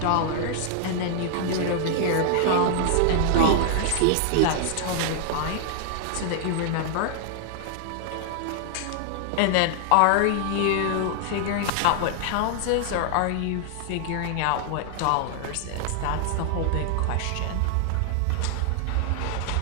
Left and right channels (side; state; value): both; different; correlation -0.01